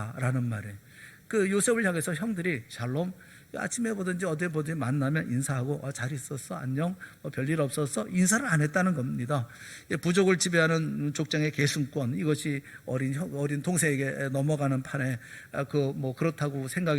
말이에요. 그 요셉을 향해서 형들이 샬롬 아침에 보든지 어디에 보든지 만나면 인사하고 잘 있었어 안녕 별일 없었어 인사를 안 했다는 겁니다. 부족을 지배하는 족장의 계승권 이것이 어린 동생에게 넘어가는 판에 그렇다고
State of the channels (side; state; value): both; identical; correlation 1.00